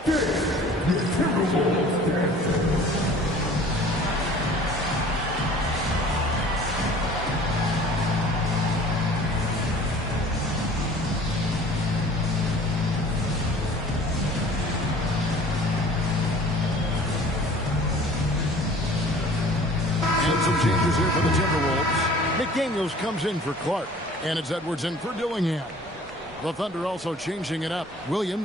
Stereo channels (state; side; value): normal; both; correlation 0.48